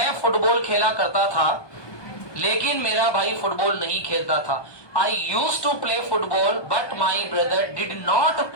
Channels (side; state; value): right; late; 1.2 ms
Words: फुटबॉल खेला करता था लेकिन मेरा भाई फुटबॉल नहीं खेलता था, I used to play football but my brother did not